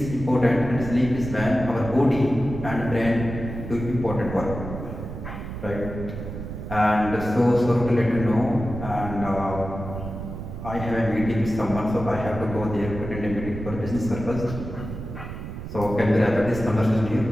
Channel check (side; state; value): right; noise; rumble, 8 dB below the sound